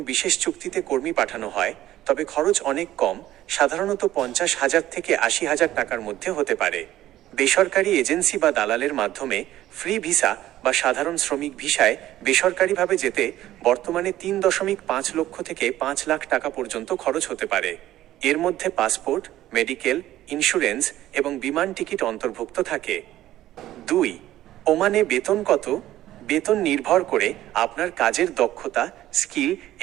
বিশেষ চুক্তিতে কর্মী পাঠানো হয় তবে খরচ অনেক কম, সাধারণত ৫০,০০০ থেকে ৮০,০০০ টাকার মধ্যে হতে পারে। বেসরকারি এজেন্সি বা দালালের মাধ্যমে ফ্রি ভিসা বা সাধারণ শ্রমিক ভিসায় বেসরকারিভাবে যেতে বর্তমানে ৩.৫ লক্ষ থেকে ৫ লাখ টাকা পর্যন্ত খরচ হতে পারে। এর মধ্যে পাসপোর্ট, মেডিকেল, ইন্স্যুরেন্স এবং বিমান টিকিট অন্তর্ভুক্ত থাকে। ২. ওমানে বেতন কত? বেতন নির্ভর করে আপনার কাজের দক্ষতা, স্কিল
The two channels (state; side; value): quieter; left; 14.0 dB